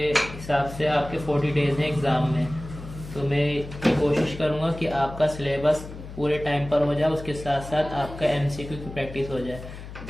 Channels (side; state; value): left; noise; hum, 12 dB below the sound